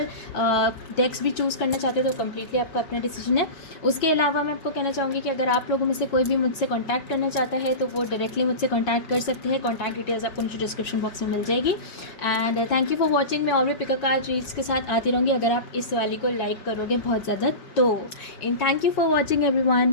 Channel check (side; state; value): right; late; 5.1 ms